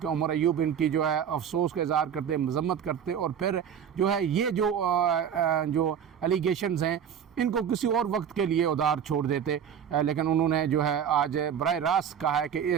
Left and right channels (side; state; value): left; quieter; 8.4 dB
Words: उमर अयूब इनकी जो है अफसोस का इज़हार करते, मज़म्मत करते और फिर जो है ये जो एलिगेशंस हैं इनको किसी और वक्त के लिए उधार छोड़ देते, लेकिन उन्होंने जो है आज बराह रास्त कहा है कि